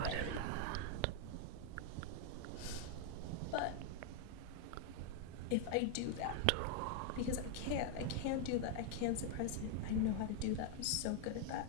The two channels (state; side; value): different; both; correlation 0.00